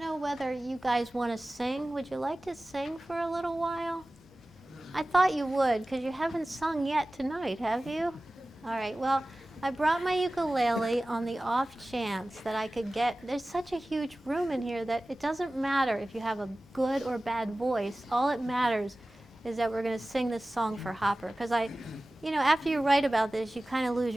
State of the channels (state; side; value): normal; both; correlation 0.97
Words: whether you guys want to sing. Would you like to sing for a little while? I thought you would, because you haven't sung yet tonight, have you? All right, well, I brought my ukulele on the off chance that I could get, there's such a huge room in here that it doesn't matter if you have a good or bad voice. All it matters is that we're going to sing this song for Hopper. Because you know, after you write about this, you kind of lose